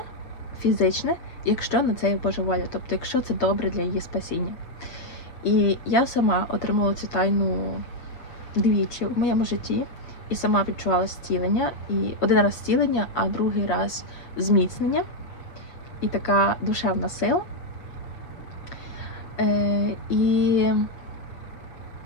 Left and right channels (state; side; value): late; right; 7.4 ms